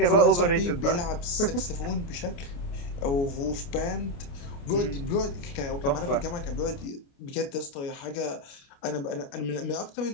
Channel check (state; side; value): late; right; 29 ms